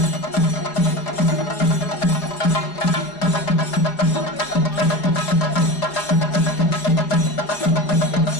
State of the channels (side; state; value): right; late; 4.9 ms